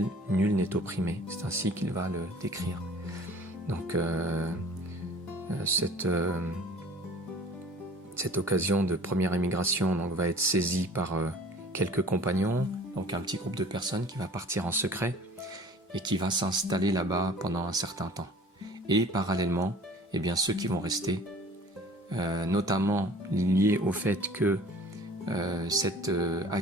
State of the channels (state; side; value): normal; both; correlation 0.47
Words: nul n'est opprimé. C'est ainsi qu'il va le décrire. Donc cette occasion de première émigration va être saisie par quelques compagnons, donc un petit groupe de personnes qui va partir en secret et qui va s'installer là-bas pendant un certain temps. Et parallèlement, ceux qui vont rester, notamment liés au fait que cet